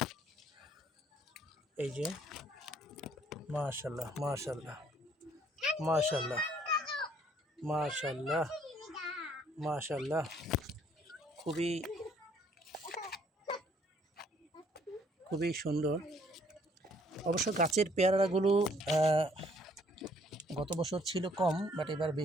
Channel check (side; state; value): both; normal; correlation 0.63